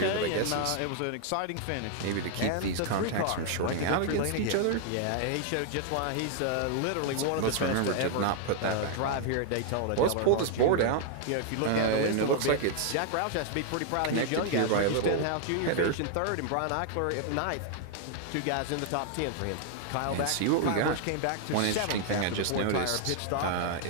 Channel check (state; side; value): different; both; correlation 0.00